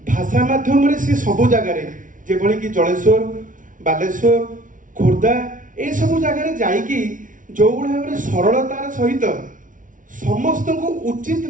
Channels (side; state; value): left; late; 0.38 ms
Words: भाषा माध्यम से सबु जगार जेभली कि जलेश्वर बालेश्वर खोर्धा ये सब जगार जाइकी जो भाव में सरलतार सहित समस्त को उचित